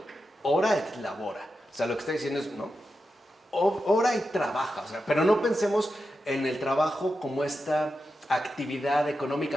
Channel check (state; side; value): normal; both; correlation 0.89